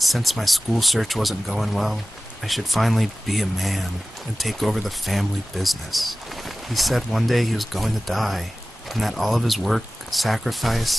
since my school search wasn't going well, I should finally be a man and take over the family business. He said one day he was going to die, and that all of his work,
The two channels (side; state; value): both; normal; correlation 0.97